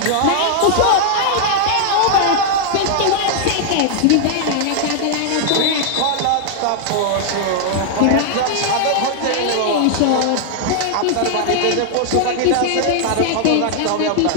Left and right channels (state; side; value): different; both; correlation 0.00